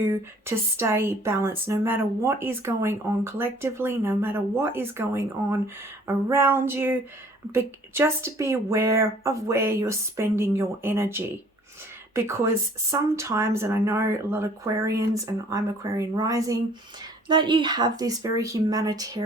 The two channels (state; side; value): normal; both; correlation 0.55